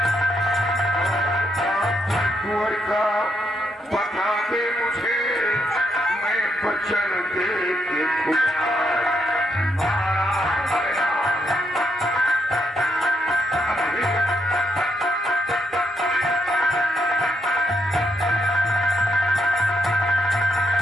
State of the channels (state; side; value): normal; both; correlation 0.77